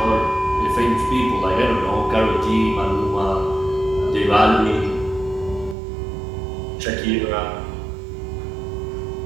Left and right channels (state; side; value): drops out; left; at 5.8 s